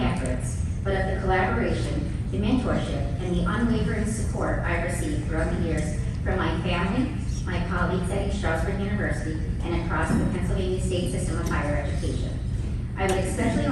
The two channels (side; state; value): both; identical; correlation 1.00